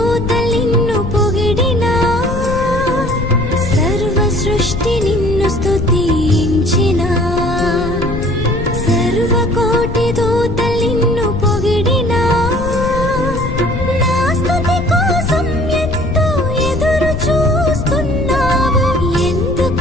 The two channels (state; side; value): noise; left; rumble, 5 dB below the sound